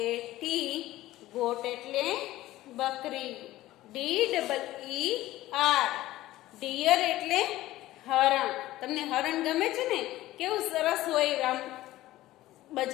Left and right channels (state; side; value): quieter; right; 16.0 dB